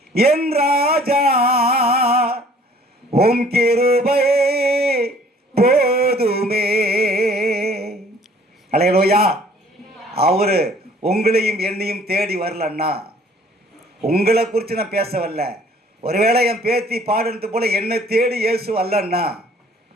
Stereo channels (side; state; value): both; normal; correlation 0.55